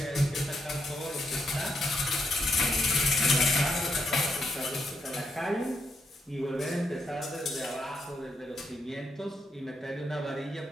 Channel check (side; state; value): both; normal; correlation 0.79